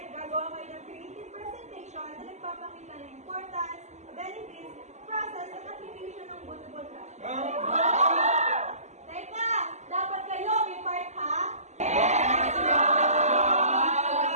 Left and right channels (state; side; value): late; left; 0.33 ms